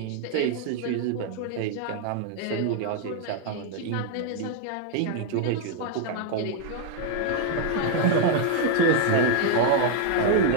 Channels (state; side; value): different; both; correlation 0.00